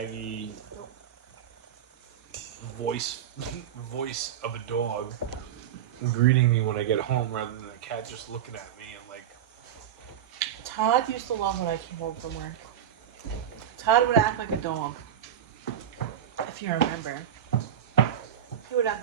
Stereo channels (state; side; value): quieter; left; 9.8 dB